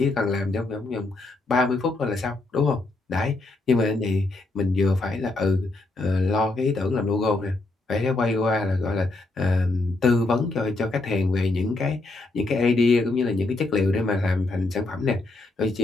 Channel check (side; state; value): right; quieter; 3.1 dB